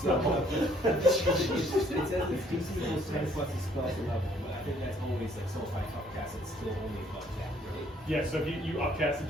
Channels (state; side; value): normal; both; correlation 0.63